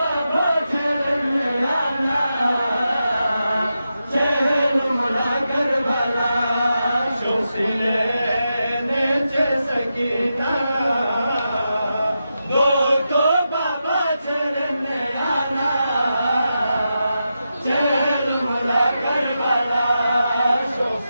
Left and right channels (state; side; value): inverted; both; correlation -0.88